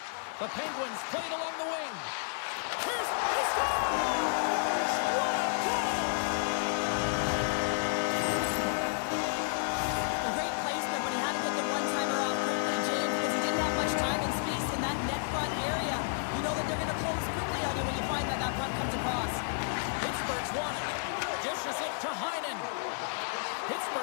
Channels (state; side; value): silent; right; digital silence